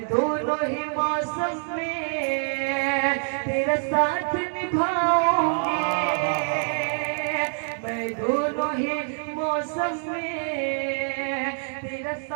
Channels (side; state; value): left; silent; digital silence